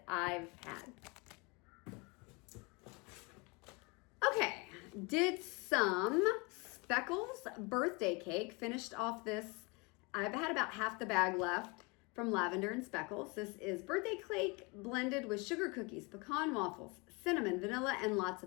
I've had. Okay, did some Speckles birthday cake. Finished off this. I've had about half the bag left from Lavender and Speckles. This is birthday cake blended with sugar cookies, pecan waffles, cinnamon, vanilla, and lots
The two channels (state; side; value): quieter; right; 28.7 dB